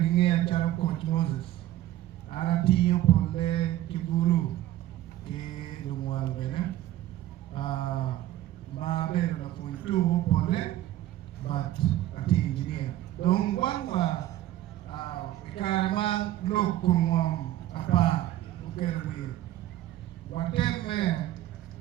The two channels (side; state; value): left; quieter; 14.0 dB